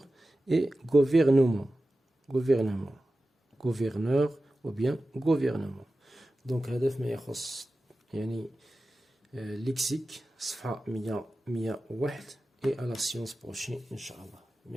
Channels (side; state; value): both; normal; correlation 0.94